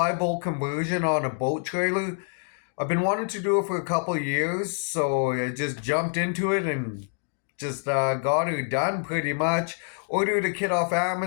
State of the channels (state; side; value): silent; right; digital silence